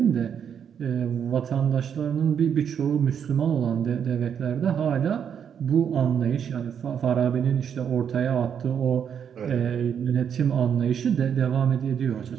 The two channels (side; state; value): left; quieter; 8.0 dB